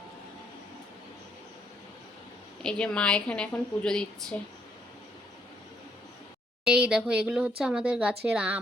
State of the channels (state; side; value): normal; both; correlation 0.71